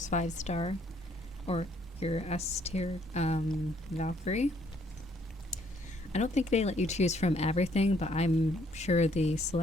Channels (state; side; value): normal; both; correlation 0.66